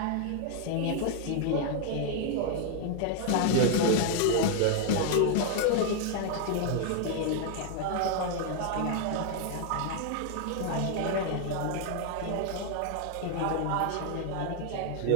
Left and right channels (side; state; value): both; different; correlation 0.00